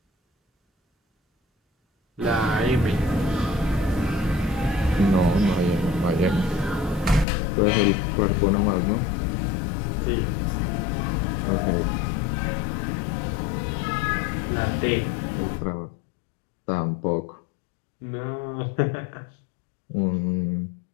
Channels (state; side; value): drops out; right; at 7.2 s